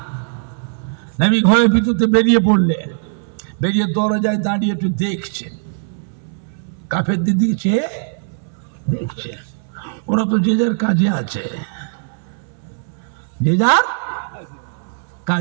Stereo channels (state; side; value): silent; left; 66 dB below the other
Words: নবী ঘরের ভিতরতে বেরিয়ে পড়লেন। বেরিয়ে দরজায় দাঁড়িয়ে একটু দেখছেন, কাফেরদের দিকে দেখছে। ওরা তো যে যার কাজে আছে, যে যার